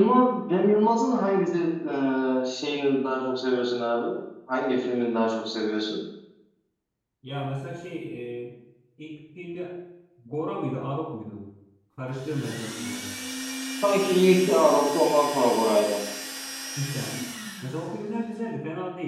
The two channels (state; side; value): identical; both; correlation 1.00